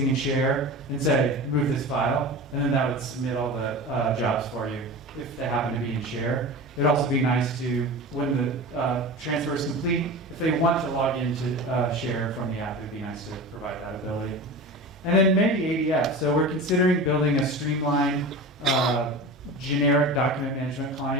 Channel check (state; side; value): normal; both; correlation 0.31